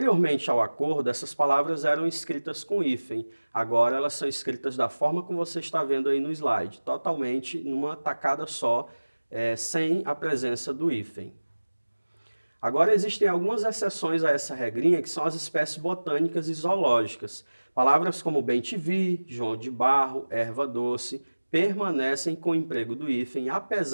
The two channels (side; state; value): both; inverted; correlation -1.00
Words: ao acordo, essas palavras eram escritas com hífen. Agora elas são escritas da forma como você está vendo aí no slide, totalmente numa tacada só, sem a presença do hífen. Agora existem algumas exceções a essa regrinha, que são as espécies botânicas e zoológicas. Palavras como bem-te-vi, João de Barro, erva doce, permanecem com o emprego do hífen,